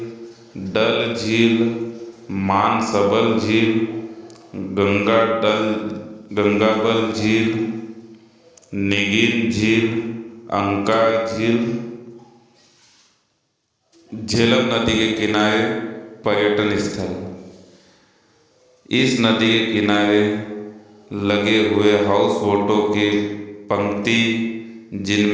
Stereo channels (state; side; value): identical; both; correlation 1.00